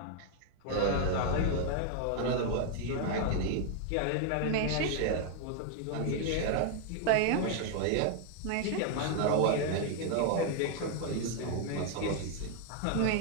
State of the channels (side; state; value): both; different; correlation 0.00